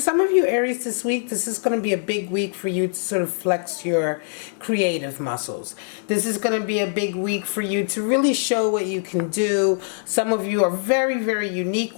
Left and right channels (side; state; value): right; silent; digital silence